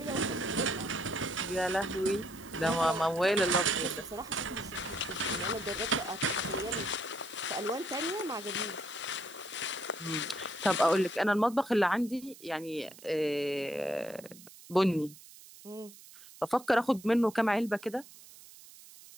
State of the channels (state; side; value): noise; right; hiss, 19 dB below the sound